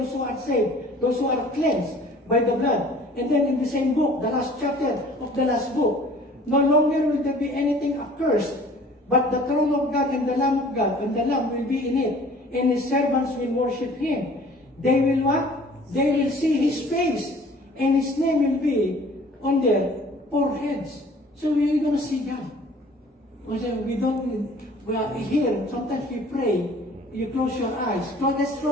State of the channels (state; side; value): normal; both; correlation 0.50